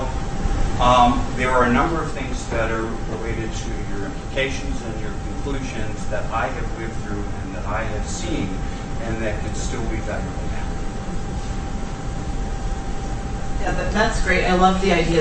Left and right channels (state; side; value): identical; both; correlation 1.00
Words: there are a number of things that are related to your implications and your conclusions that I have lived through and that I have seen and that can still be valuable now. Yeah, that's great. I love the